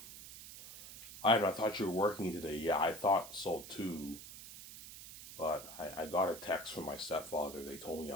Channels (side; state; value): right; noise; hiss, 14 dB below the sound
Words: I thought you were working today. Yeah, I thought so too. But I got a text from my stepfather. They told me